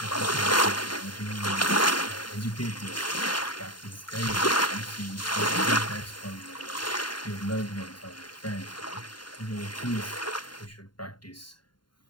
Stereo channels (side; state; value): right; late; 0.71 ms